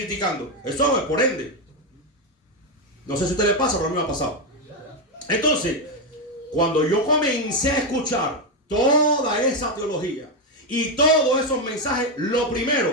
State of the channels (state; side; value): normal; both; correlation 0.06